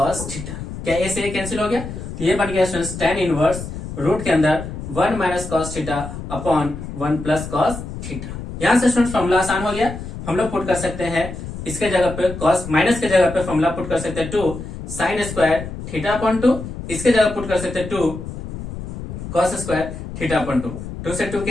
theta. क्या a से a कैंसिल हो गया, तो ये बन गया स्टूडेंट्स tan इनवर्स रूट के अंदर 1 minus cos theta upon 1 plus cos theta. यहां से स्टूडेंट्स फॉर्मूला आसान हो गया, हम लोग पुट कर सकते हैं इसके जगह पे cos माइनस के जगह पे फॉर्मूला पुट कर सकते हैं 2 साइन स्क्वायर थीटा अपॉन 2, इसके जगह पुट कर सकते हैं 2 cos स्क्वायर थीटा अपॉन 2, 2 से 2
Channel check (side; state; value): left; noise; rumble, 9 dB below the sound